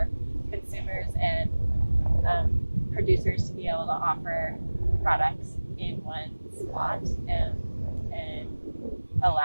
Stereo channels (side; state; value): both; inverted; correlation -1.00